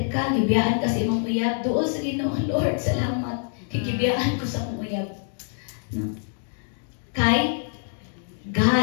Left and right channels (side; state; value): right; silent; 62 dB below the other